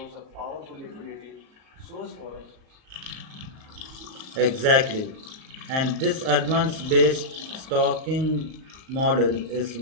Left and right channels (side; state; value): left; late; 38 ms